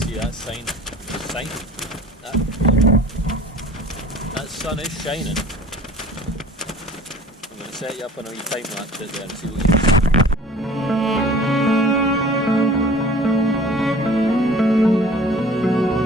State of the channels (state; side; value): normal; both; correlation 0.46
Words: see, that that sun is shining. I'm going to set you up on a wee time lapse out there and see what you can see.